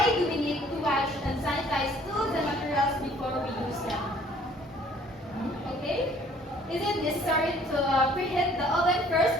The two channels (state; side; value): normal; both; correlation 0.57